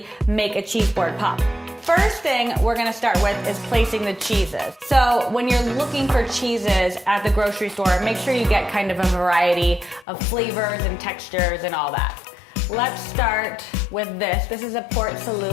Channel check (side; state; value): right; drops out; at 10.1 s